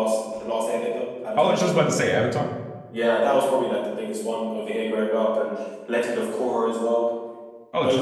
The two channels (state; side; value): identical; both; correlation 1.00